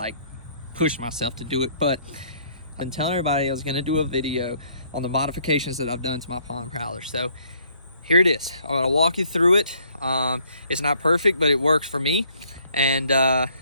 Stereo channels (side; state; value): both; inverted; correlation -0.64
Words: pushed myself to do it. But I've been telling everybody I was going to do a video on the modifications that I've done to my Pond Prowler. So here it is. I'm going to walk you through it. It's not perfect, but it works for me. And